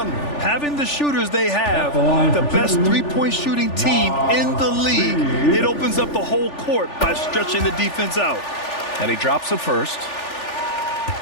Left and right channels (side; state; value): right; late; 3.4 ms